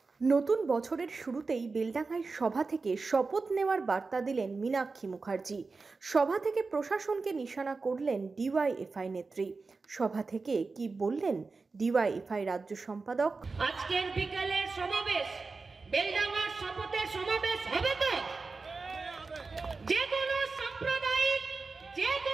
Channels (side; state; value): left; quieter; 4.1 dB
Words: নতুন বছরের শুরুতেই বেলডাঙ্গায় সভা থেকে শপথ নেওয়ার বার্তা দিলেন মীনাক্ষী মুখার্জি। সভা থেকে প্রশাসনকে নিশানা করলেন ডিওয়াইএফআই নেত্রী। সভা থেকে কি বললেন ডিওয়াইএফআই রাজ্য সম্পাদক? আজকের বিকেলের সমাবেশ বেলডাঙ্গার শপথের সমাবেশ হবে তো? যে কোনো সাম্প্রদায়িক, যে